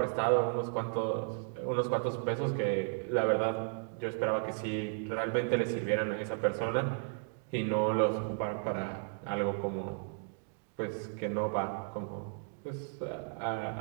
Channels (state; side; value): silent; left; 55 dB below the other